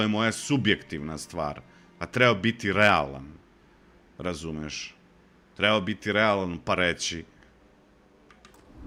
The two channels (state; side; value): identical; both; correlation 1.00